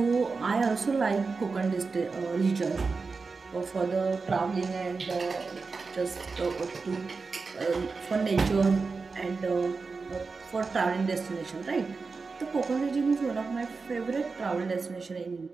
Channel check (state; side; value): quieter; left; 4.4 dB